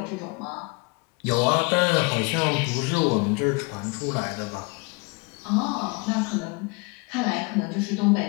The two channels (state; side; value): quieter; right; 29.3 dB